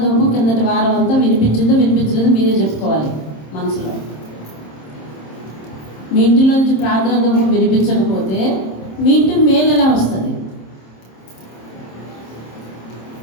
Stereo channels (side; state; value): right; late; 26 ms